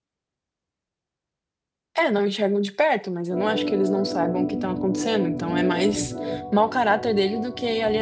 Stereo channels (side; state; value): both; identical; correlation 1.00